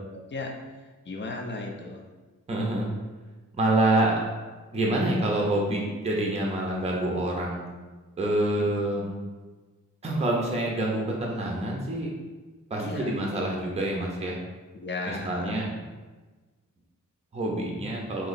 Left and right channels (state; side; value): normal; both; correlation 0.51